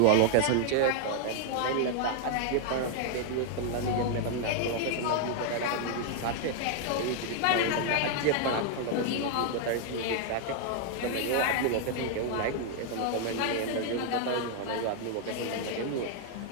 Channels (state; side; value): different; both; correlation 0.00